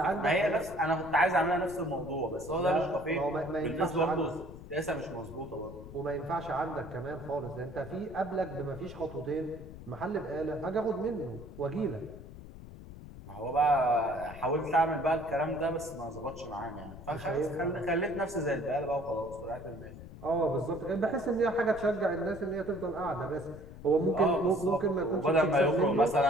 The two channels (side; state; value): left; noise; rumble, 15 dB below the sound